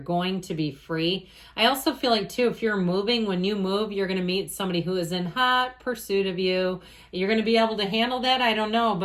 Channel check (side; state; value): both; identical; correlation 1.00